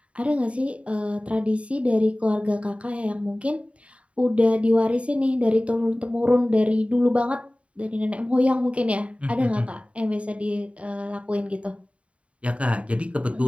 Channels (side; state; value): left; late; 0.063 ms